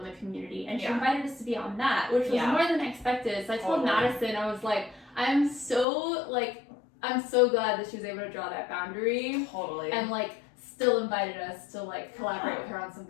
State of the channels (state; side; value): drops out; right; at 5.9 s